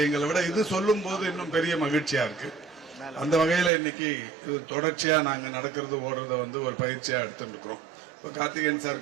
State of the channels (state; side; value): drops out; left; at 3.7 s